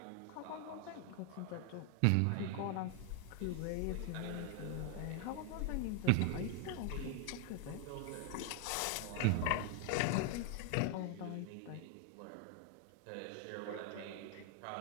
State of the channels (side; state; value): both; different; correlation 0.00